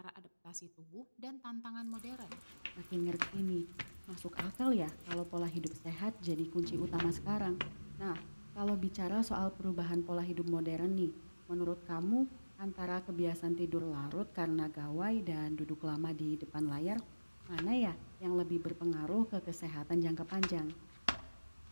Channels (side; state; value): both; inverted; correlation -1.00